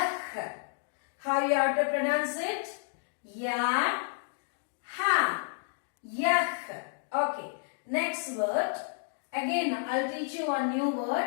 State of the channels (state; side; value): silent; right; digital silence